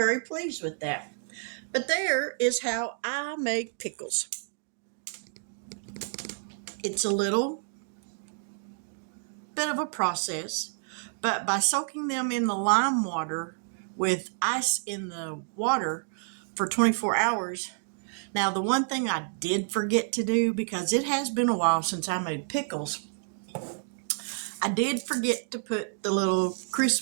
pleased with that. But there is how I make pickles. It's a little bit of a process, but by soaking them in the lime water with ice in the water for 24 hours. Now, the one thing I did forget to do, because it has been a while since I made pickles, I did forget to put the little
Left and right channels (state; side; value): silent; left; digital silence